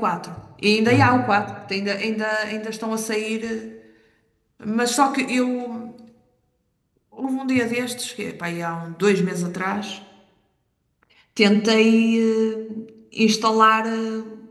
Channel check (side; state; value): both; identical; correlation 1.00